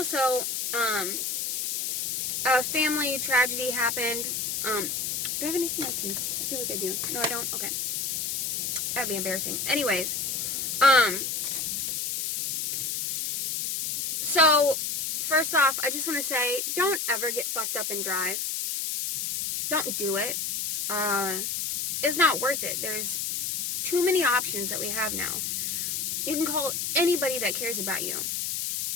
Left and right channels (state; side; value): noise; left; hiss, 1 dB below the sound